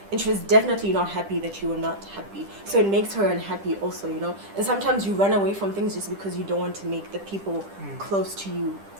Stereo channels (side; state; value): left; late; 10 ms